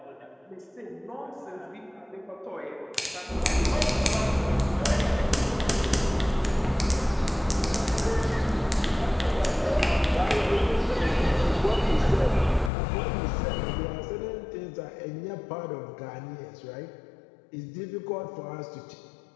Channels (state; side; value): drops out; right; at 12.7 s